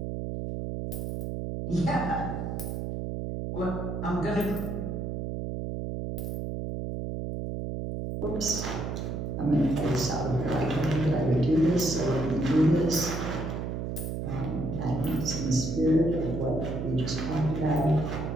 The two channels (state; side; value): noise; right; hum, 4 dB below the sound